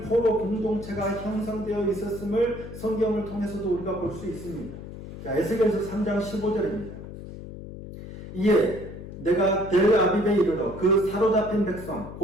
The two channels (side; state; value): left; noise; hum, 12 dB below the sound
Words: 포로 공동체가 형성되어 있었음을 성경을 통해서도 우리가 볼 수 있습니다. 자, 에스겔서 3장 15절입니다. 이에 내가 델 아빕에 이르러 그 사로잡힌 백성